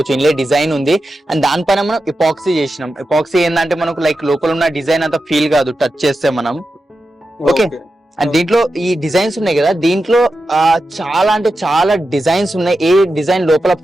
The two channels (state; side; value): normal; both; correlation 0.90